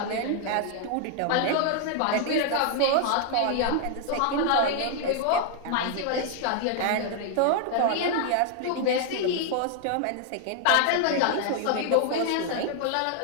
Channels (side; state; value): both; different; correlation 0.00